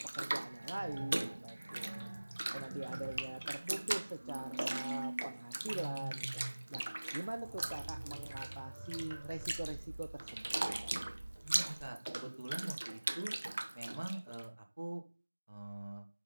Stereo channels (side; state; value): both; inverted; correlation -1.00